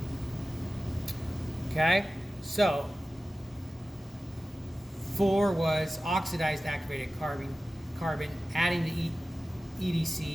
Okay, so 4 was oxidized activated carbon, adding the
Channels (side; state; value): both; normal; correlation 0.95